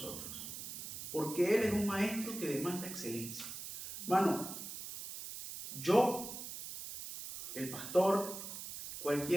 Porque Él es un Maestro que demanda excelencia. Hermano, yo, el pastor,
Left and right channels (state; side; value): noise; right; hiss, 8 dB below the sound